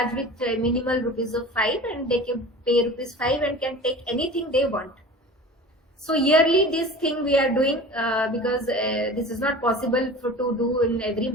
with minimal rupees of 5, and they can pay rupees 5 and can take anything they want. So yearly this thing we are doing, because this is not possible to do in every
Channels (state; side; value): normal; both; correlation 0.38